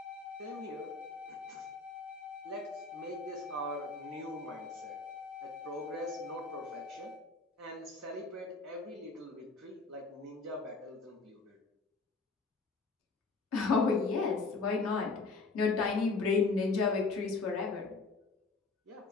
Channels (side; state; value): right; quieter; 3.9 dB